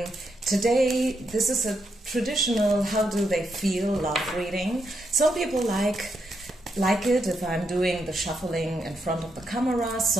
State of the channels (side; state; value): both; normal; correlation 0.81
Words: Today this is a traditional how do they feel love reading. Some people like it if I'm doing the shuffling in front of the camera,